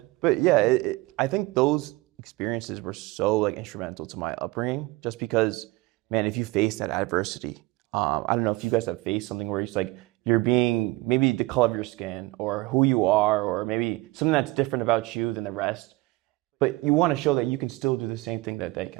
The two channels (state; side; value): quieter; left; 21.0 dB